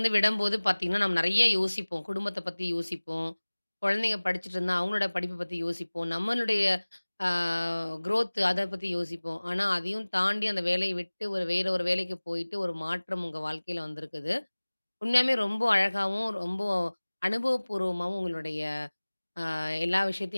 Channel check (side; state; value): both; inverted; correlation -1.00